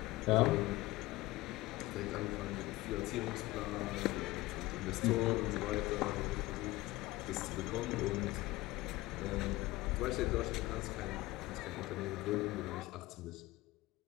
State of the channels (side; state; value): right; quieter; 19.1 dB